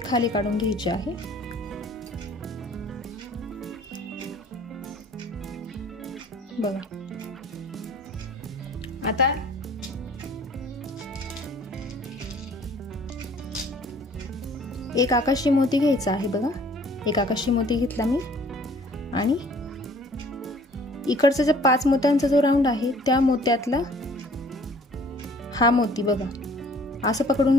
खाली काढून घ्यायची आहे। बघा, आता एक आकाशी मोती घ्यायचा आहे। बघा, एक आकाशी मोती घेतला मी आणि इकडचा जो 5 मोत्यांचा जो राऊंड आहे त्या मोत्यातला हा मोती बघा असं पकडून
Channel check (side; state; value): both; normal; correlation 0.54